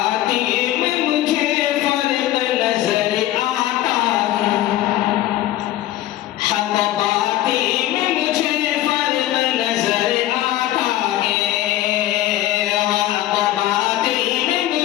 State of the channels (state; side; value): quieter; right; 14.4 dB